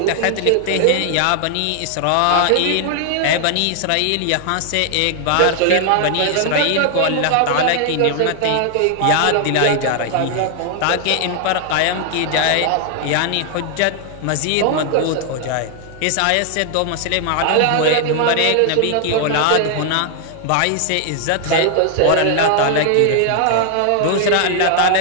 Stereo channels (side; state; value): both; different; correlation 0.00